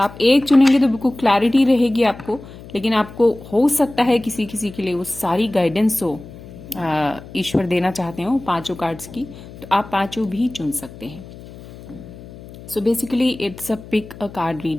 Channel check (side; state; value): left; noise; hum, 17 dB below the sound